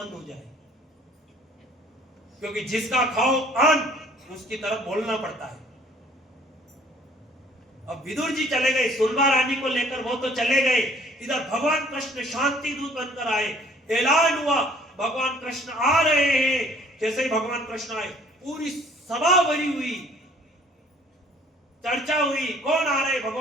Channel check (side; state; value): both; normal; correlation 0.56